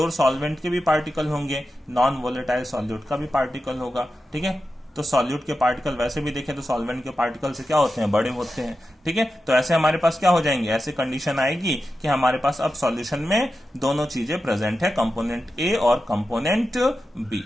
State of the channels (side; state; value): both; normal; correlation 0.91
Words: सॉल्वेंट के भी पार्टिकल होंगे, नॉन वोलेटाइल सॉल्यूट का भी पार्टिकल होगा। ठीक है, तो सॉल्यूट के पार्टिकल वैसे भी देखें तो सॉल्वेंट के पार्टिकल से क्या होते हैं, बड़े होते हैं। ठीक है, तो ऐसे हमारे पास क्या हो जाएंगे, ऐसे कंडीशन आएगी कि हमारे पास अब सॉल्यूशन में दोनों चीजें प्रेजेंट है, कंपोनेंट A और कंपोनेंट B।